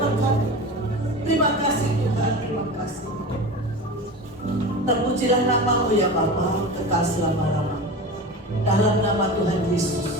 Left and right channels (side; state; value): both; normal; correlation 0.30